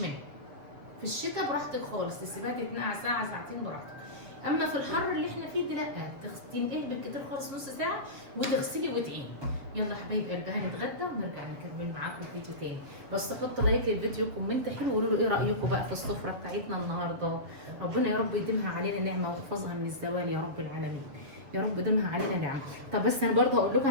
في الشتاء براحتك خالص، تسيبها تتنقع ساعه ساعتين براحتك. اما في الحر اللي احنا فيه ده لا، تنقعي بالكتير خالص نص ساعه وتغسلي وتعيني. يلا حبايب قلبي هنتغدى ونرجع نكمل معاكم فيديو تاني. بس حطوا لايك للفيديو، كومنت حلو، وقولوا له ايه رايكم بقى في السفره بتاعتنا النهارده. ربنا يا رب يديمها علينا نعمه ويحفظها من الزوال يا رب العالمين. يا رب يديمها علينا نعمه. طب بس انا برضه هقول لكم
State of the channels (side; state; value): left; late; 7.0 ms